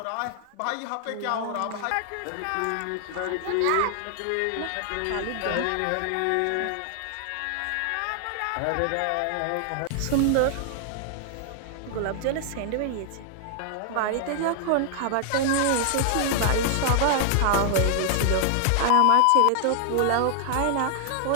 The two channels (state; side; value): different; both; correlation 0.00